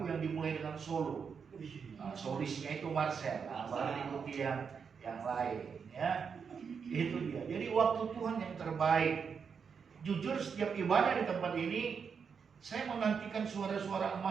yang dimulai dengan solo. Solisnya itu Marcel. Baru diikuti yang lain. Ya, itu dia. Jadi waktu Tuhan yang terbaik. Jujur setiap ibadah di tempat ini, saya menantikan suara-suara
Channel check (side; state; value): left; quieter; 6.2 dB